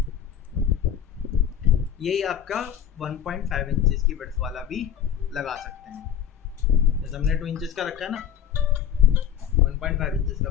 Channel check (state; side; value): quieter; right; 9.3 dB